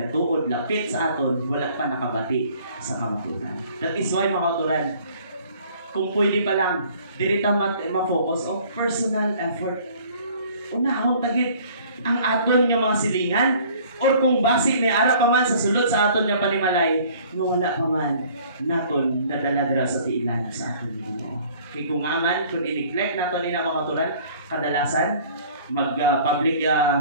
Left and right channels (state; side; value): inverted; both; correlation -0.53